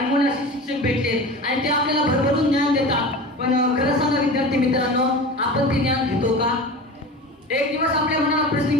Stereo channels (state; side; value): normal; both; correlation 0.32